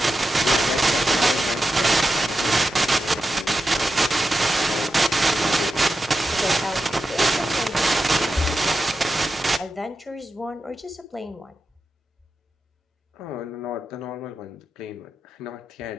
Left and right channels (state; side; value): normal; both; correlation 0.90